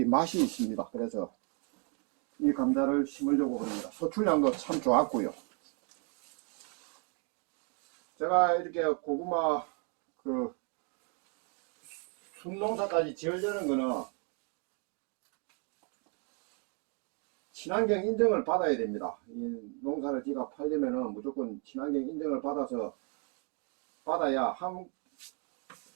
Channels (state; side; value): quieter; left; 37.0 dB